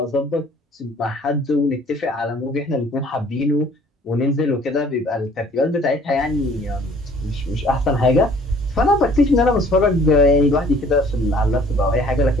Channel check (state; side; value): normal; both; correlation 0.55